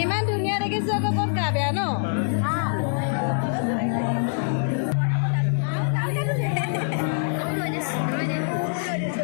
ইমান ধুনীয়া দেখিছো আকৌ ক'ত গা বেয়া ন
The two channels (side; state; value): right; silent; 62 dB below the other